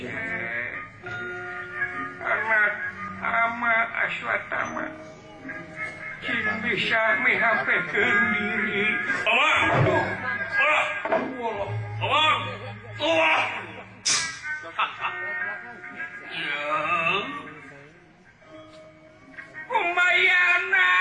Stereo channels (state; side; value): identical; both; correlation 1.00